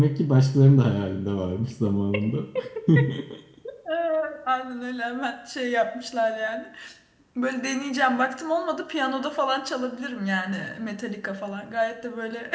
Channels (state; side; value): identical; both; correlation 1.00